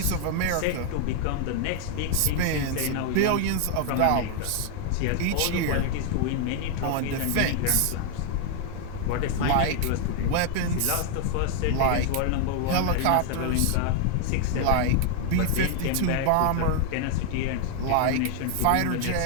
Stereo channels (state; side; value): different; both; correlation 0.00